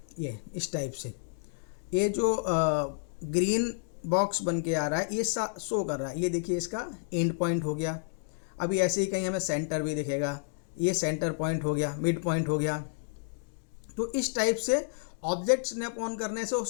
ये इस टाइप से ये जो ग्रीन बॉक्स बन के आ रहा है ये शो कर रहा है। ये देखिए इसका एंड पॉइंट हो गया। अभी ऐसे ही कहीं हमें सेंटर भी दिखेगा, ये सेंटर पॉइंट हो गया, मिड पॉइंट हो गया। तो इस टाइप से ऑब्जेक्ट स्नैप ऑन करने से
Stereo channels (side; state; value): right; silent; digital silence